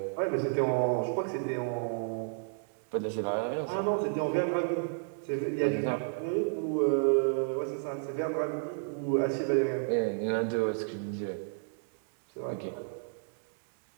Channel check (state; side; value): silent; left; digital silence